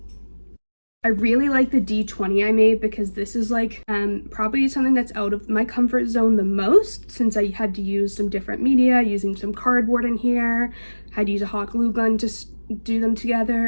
I really like the D20 I made because this is like probably something that's out of my comfort zone the most, since I had to use some different media, using some cardboard in here, had to use a hot glue gun to do them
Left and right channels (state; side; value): inverted; both; correlation -1.00